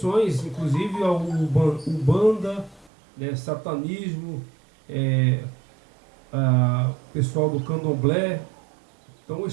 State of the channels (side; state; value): left; drops out; at 2.9 s